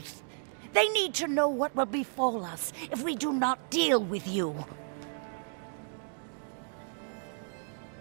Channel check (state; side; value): silent; left; 56 dB below the other